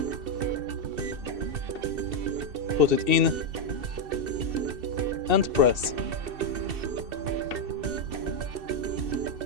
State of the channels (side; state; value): left; late; 2.7 ms